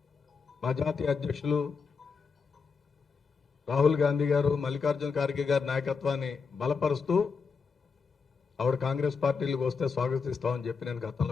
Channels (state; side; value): quieter; right; 5.3 dB